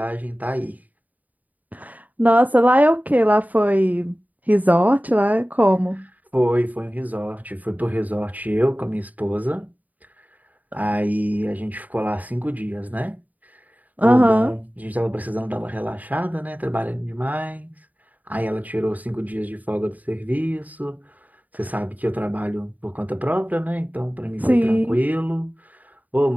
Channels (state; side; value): late; left; 0.076 ms